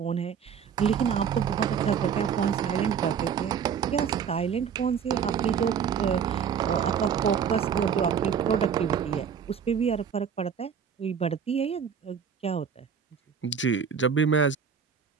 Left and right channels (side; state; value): left; quieter; 7.3 dB